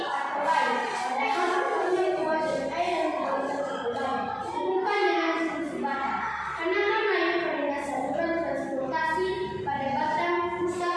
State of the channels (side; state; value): both; identical; correlation 1.00